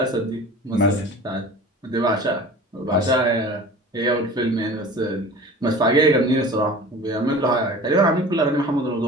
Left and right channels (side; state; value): both; normal; correlation 0.40